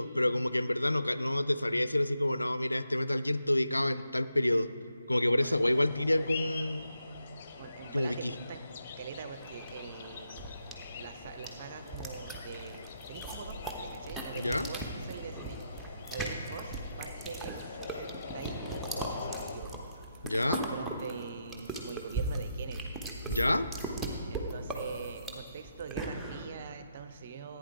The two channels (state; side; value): inverted; both; correlation -0.84